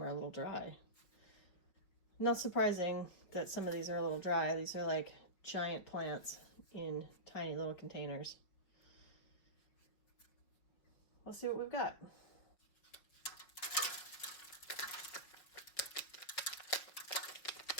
are a little dry. Not surprising that some of these are a little dry. These are like giant plants in tiny little containers. Let's see what we've got.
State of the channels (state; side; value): late; right; 5.7 ms